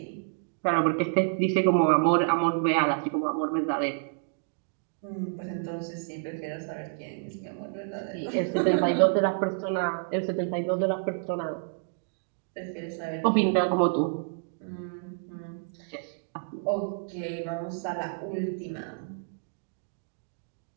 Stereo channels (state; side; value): silent; left; digital silence